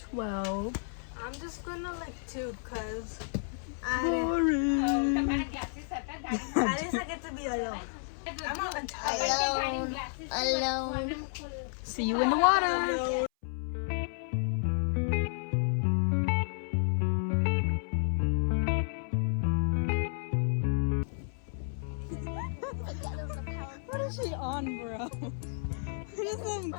I'm just gonna like tube because Boring. at least I get to be alone. I'm not tired. Alone. See you in the water. What is she on, bro? What is some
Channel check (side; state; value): right; silent; 57 dB below the other